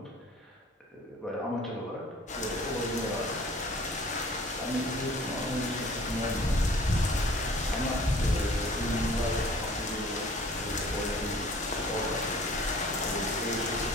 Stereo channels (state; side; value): normal; both; correlation 0.50